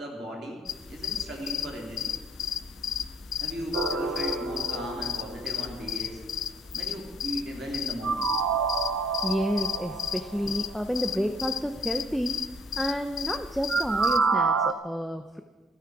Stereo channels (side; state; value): both; normal; correlation 0.64